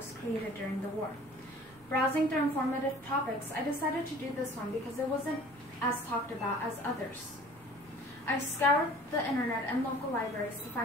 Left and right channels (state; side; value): normal; both; correlation 0.47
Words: created during the war. Browsing through informative topics, I decided to do this one because it wasn't as talked about as others. I scoured the internet and local libraries to